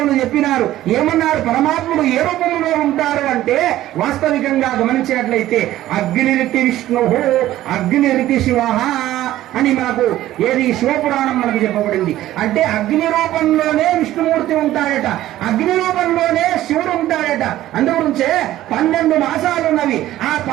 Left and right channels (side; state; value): left; quieter; 14.3 dB